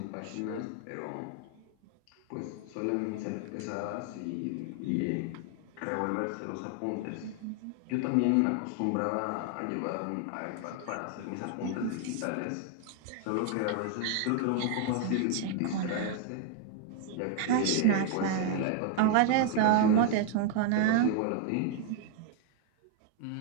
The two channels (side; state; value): both; different; correlation 0.00